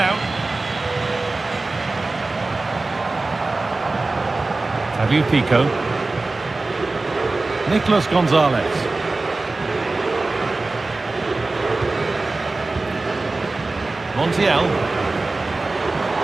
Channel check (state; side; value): quieter; left; 3.4 dB